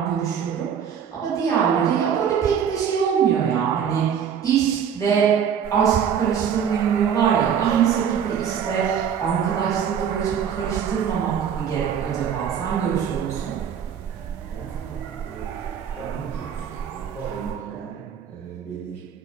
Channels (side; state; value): left; quieter; 8.0 dB